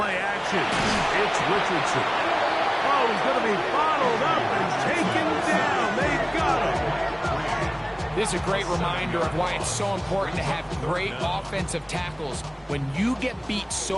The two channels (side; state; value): both; identical; correlation 1.00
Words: action. It's Richardson. Oh, he's going to be bottled up and taken down. They got him. This is a great reminder of why it's so important to have great offensive tackles. When you get beat